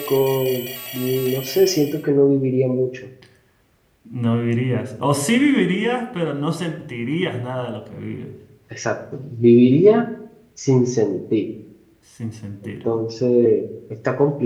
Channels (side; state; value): both; identical; correlation 1.00